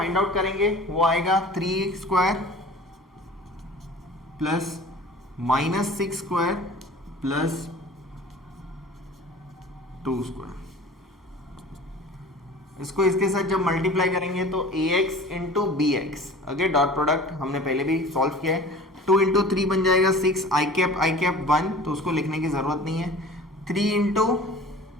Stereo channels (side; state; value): both; normal; correlation 0.42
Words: आउट करेंगे वो आएगा 3 square plus minus 6 square plus 2 square. इसको इसके साथ जब मल्टीप्लाई करेंगे तो ax into B X, okay, dot product हमने पहले भी सॉल्व किया है। 2 इंटू 3 बन जाएगा 6, आई कैप 1, तो उसको लिखने की जरूरत नहीं है। 3 इंटू